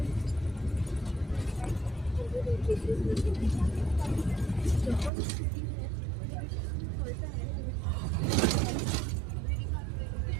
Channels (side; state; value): left; drops out; at 5.1 s